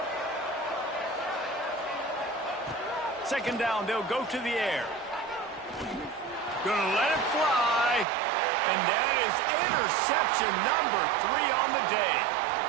Second down, they'll go to the air. Gonna let it fly. And that is interception number 3 on the day.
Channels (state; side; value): drops out; left; at 8.1 s